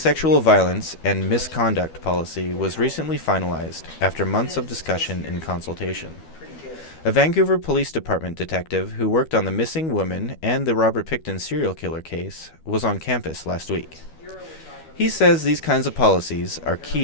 violence and misconduct policy was recently finalized after months of discussion and consultation. A Vancouver Police Department detective who worked on the missing woman and the Robert Pickton serial killer case was on campus last week. He says these kinds of policies are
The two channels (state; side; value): late; right; 12 ms